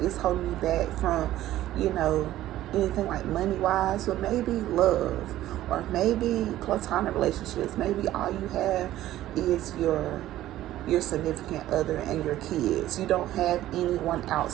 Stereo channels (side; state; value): left; quieter; 14.1 dB